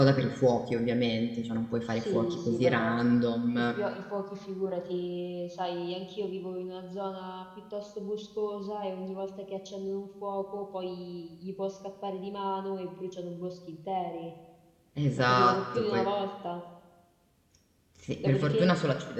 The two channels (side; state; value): both; identical; correlation 1.00